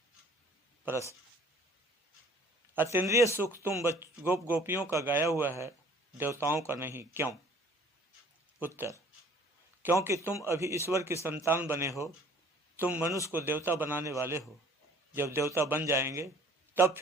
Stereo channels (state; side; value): normal; both; correlation 0.53